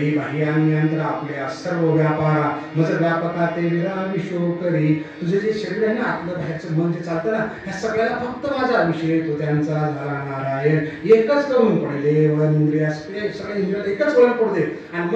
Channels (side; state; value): both; identical; correlation 1.00